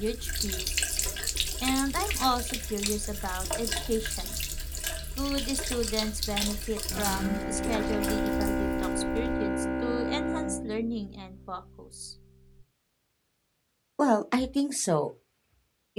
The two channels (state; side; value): identical; both; correlation 1.00